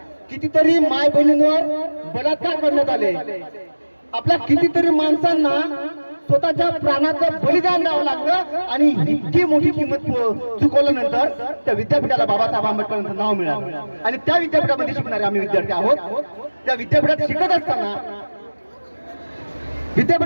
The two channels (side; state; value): both; inverted; correlation -1.00